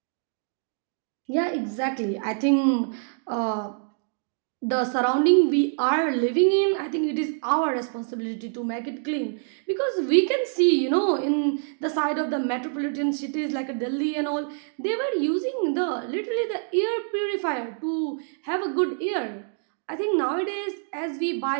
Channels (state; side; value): silent; left; digital silence